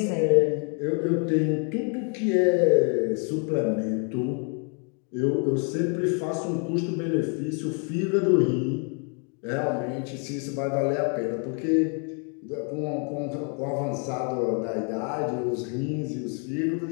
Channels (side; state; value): right; quieter; 39.7 dB